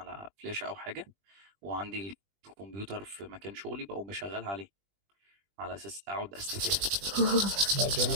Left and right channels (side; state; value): left; late; 20 ms